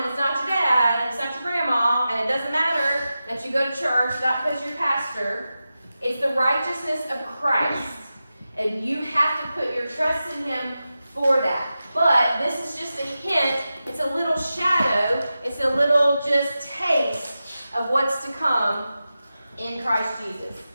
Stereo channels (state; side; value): inverted; both; correlation -0.92